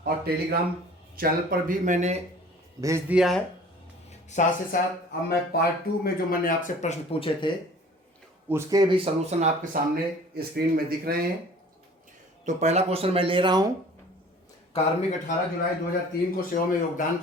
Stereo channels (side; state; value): both; normal; correlation 0.48